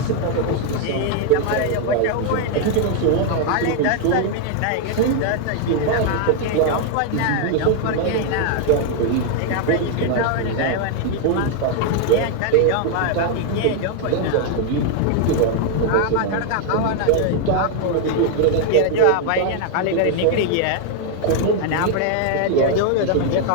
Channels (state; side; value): different; both; correlation 0.00